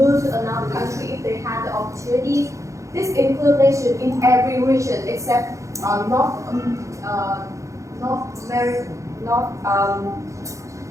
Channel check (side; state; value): left; late; 0.15 ms